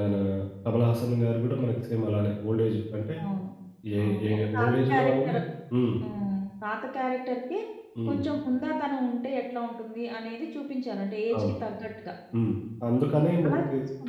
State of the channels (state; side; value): identical; both; correlation 1.00